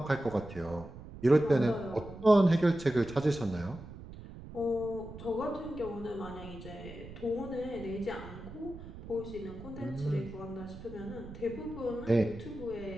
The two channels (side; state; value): right; noise; rumble, 14 dB below the sound